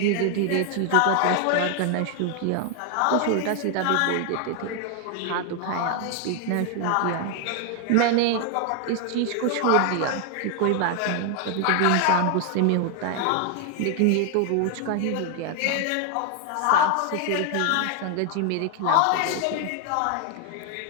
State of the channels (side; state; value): both; different; correlation 0.00